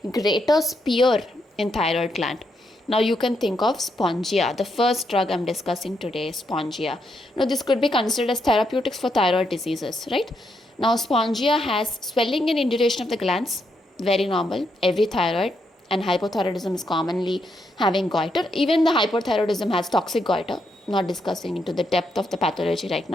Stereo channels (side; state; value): both; normal; correlation 0.79